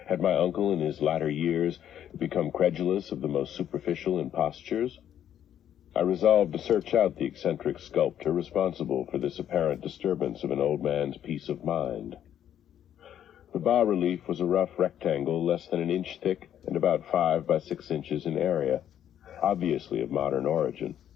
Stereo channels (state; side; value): quieter; right; 10.2 dB